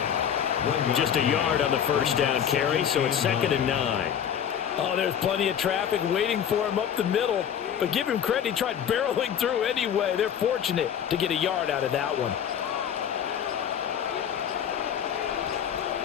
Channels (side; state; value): right; quieter; 8.8 dB